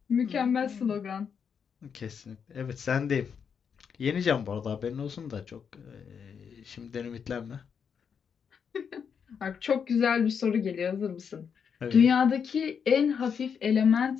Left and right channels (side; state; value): right; quieter; 6.9 dB